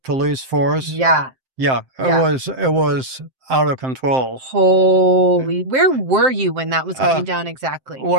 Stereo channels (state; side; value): late; left; 7.7 ms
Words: force. Yeah. Yeah, Yeah. it was out of control. Holy, where were you when that was going down exactly? You were